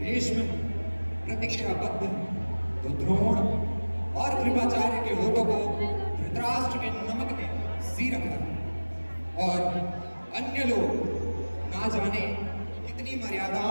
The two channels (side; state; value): both; inverted; correlation -1.00